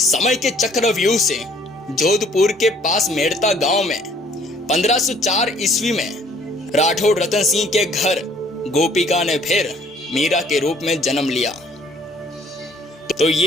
समय के चक्रव्यूह से जोधपुर के पास मेड़ता गांव में 1504 ईस्वी में राठौड़ रतन सिंह के घर गोपिका ने फिर मीरा के रूप में जन्म लिया। तो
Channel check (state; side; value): normal; both; correlation 0.59